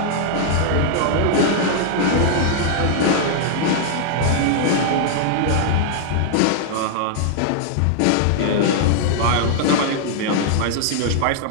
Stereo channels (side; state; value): both; different; correlation -0.01